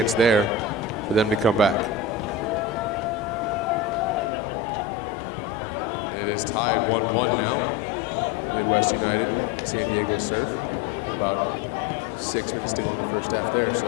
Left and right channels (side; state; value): right; drops out; at 4.2 s